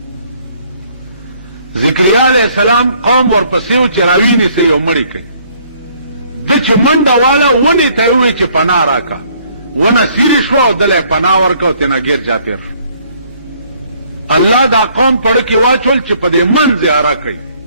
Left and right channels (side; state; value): both; inverted; correlation -0.62